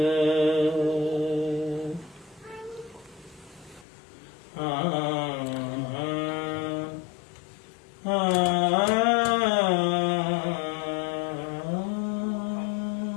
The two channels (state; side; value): drops out; right; at 3.9 s